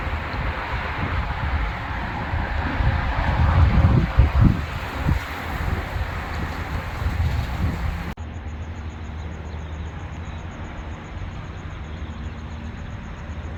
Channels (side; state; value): both; identical; correlation 1.00